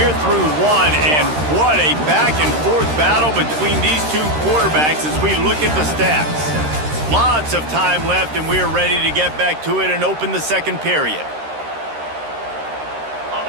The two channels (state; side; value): late; left; 13 ms